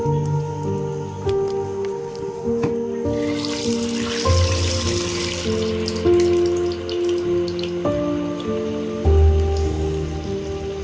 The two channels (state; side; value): identical; both; correlation 1.00